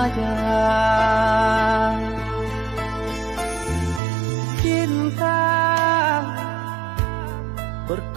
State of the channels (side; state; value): left; drops out; at 4.0 s